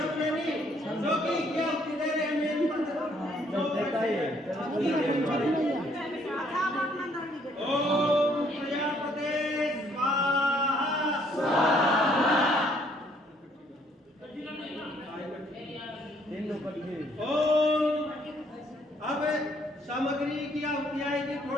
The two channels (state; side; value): normal; both; correlation 0.65